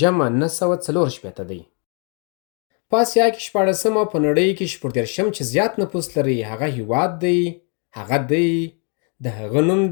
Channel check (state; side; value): quieter; right; 39.2 dB